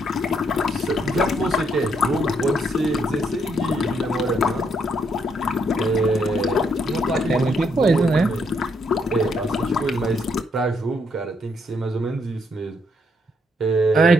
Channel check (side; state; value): both; normal; correlation 0.74